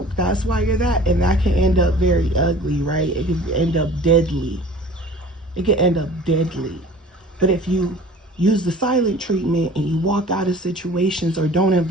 That's why you're that. And that can end up very ugly, right? It can end up deadly. It can end up deadly. But if you use the silent treatment and you walk out of situations or don't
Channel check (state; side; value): normal; both; correlation 0.45